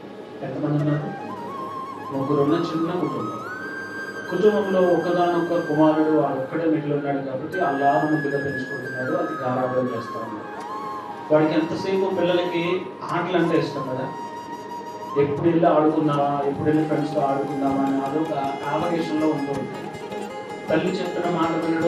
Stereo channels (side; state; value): both; identical; correlation 1.00